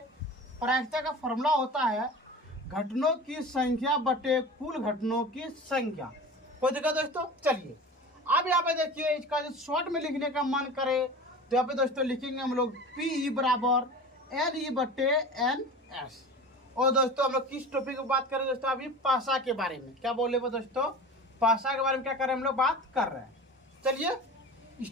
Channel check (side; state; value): both; normal; correlation 0.35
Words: प्रायिकता का फॉर्मूला होता है घटनों की संख्या बटे कुल घटनों की संख्या। कोई दिक्कत दोस्तों? चलिए, अब यहाँ पे देखिए, इसका जो शॉर्ट में लिखने का मन करे तो यहाँ पे दोस्तों लिखेंगे हम लोग पी बराबर एन ई बटे एन एस। और दोस्तों हम लोग किस टॉपिक की बात करें दोस्तों? अभी पासा के बारे में। क्या बोले वो दोस्तों? पासा के बारे में क्या कर रहे हैं हम लोग, बात कर रहे हैं। चलिए